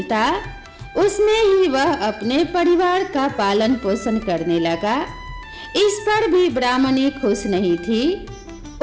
उसमें ही वह अपने परिवार का पालन पोषण करने लगा। इस पर भी ब्राह्मणी खुश नहीं थी।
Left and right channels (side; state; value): both; identical; correlation 1.00